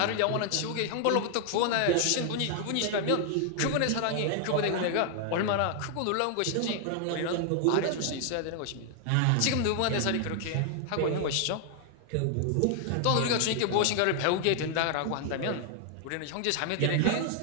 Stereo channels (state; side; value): different; both; correlation 0.00